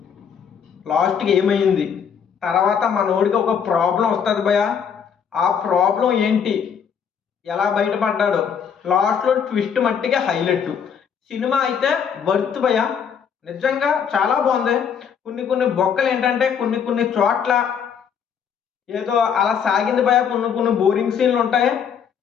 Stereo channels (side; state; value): right; quieter; 7.4 dB